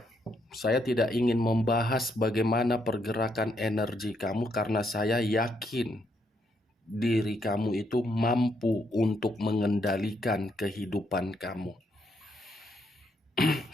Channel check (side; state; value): both; normal; correlation 0.75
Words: saya tidak ingin membahas bagaimana pergerakan energi kamu karena saya yakin diri kamu itu mampu untuk mengendalikan kehidupan kamu.